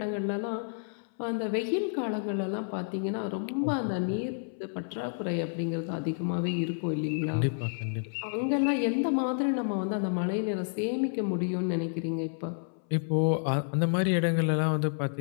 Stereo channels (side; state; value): right; silent; 58 dB below the other